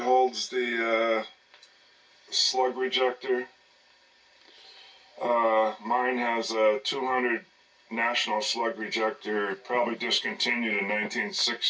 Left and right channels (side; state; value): both; identical; correlation 1.00